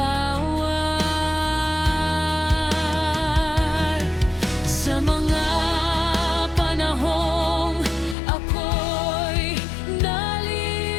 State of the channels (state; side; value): drops out; right; at 8.2 s